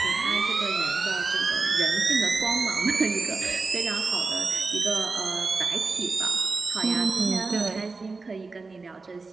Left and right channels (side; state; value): left; quieter; 4.0 dB